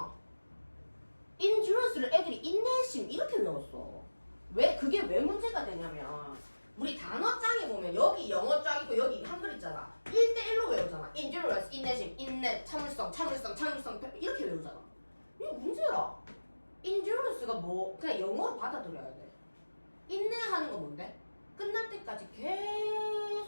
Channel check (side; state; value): both; inverted; correlation -1.00